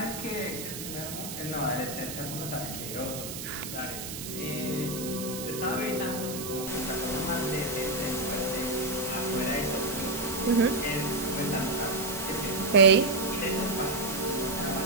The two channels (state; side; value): noise; right; hiss, 8 dB below the sound